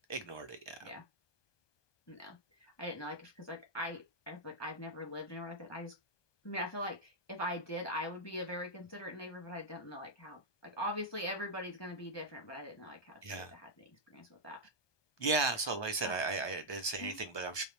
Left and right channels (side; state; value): right; late; 1.2 ms